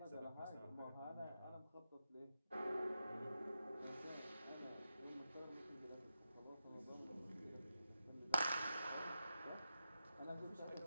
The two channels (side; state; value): both; inverted; correlation -0.89